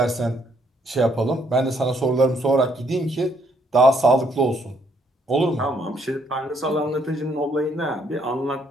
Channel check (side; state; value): both; normal; correlation 0.70